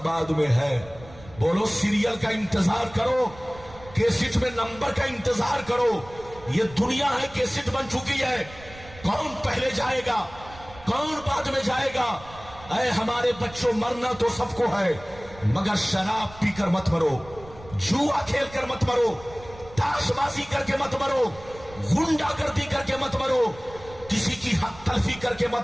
में है। बोलो, सीरियल का इंतजार करो, केसिट में नंबर का इंतजार करो। ये दुनिया है, केसिट बन चुकी है। कौन पहले जाएगा, कौन बाद में जाएगा? ऐ हमारे बच्चों, मरना तो सबको है, मगर शराब पीकर मत मरो, जुआ खेल कर मत मरो, ताशबाजी करके मत मरो, गुंडागर्दी करके मत मरो, किसी की हक तलफी करके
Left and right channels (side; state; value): right; noise; rumble, 19 dB below the sound